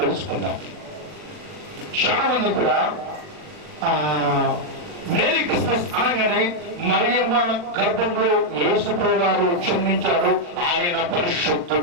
చాలా మంది కూడా మేరీ క్రిస్మస్ అనగానే మరియమ్మ గర్భంలో యేసుప్రభువు గారు జన్మించాడు, ఆయన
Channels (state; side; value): late; left; 40 ms